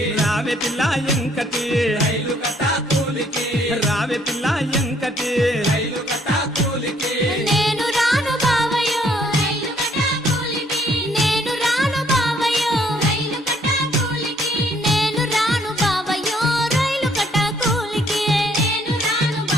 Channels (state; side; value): normal; both; correlation 0.65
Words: రావే పిల్ల ఎంకటి రైలు కట్టా కూలికి రావే పిల్ల ఎంకటి రైలు కట్టా కూలికి నేను రాను బావయ్యో రైలు కట్టా కూలికి నేను రాను బావయ్యో రైలు కట్టా కూలికి నేను రాను బావయ్యో రైలు కట్టా కూలికి నేను రాను